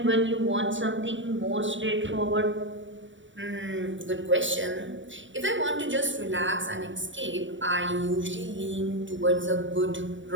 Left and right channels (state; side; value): late; left; 0.55 ms